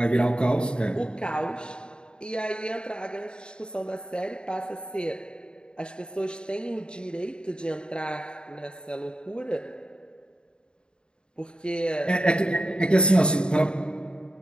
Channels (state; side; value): late; right; 0.050 ms